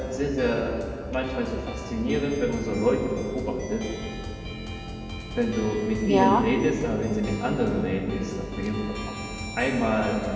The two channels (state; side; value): identical; both; correlation 1.00